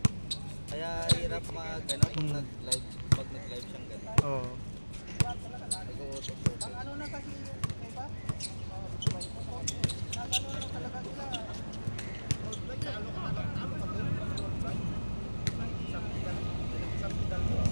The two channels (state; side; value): inverted; both; correlation -1.00